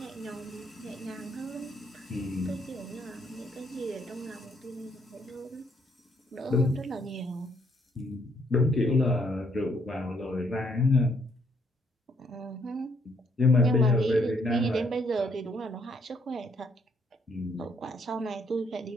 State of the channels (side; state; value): both; normal; correlation 0.70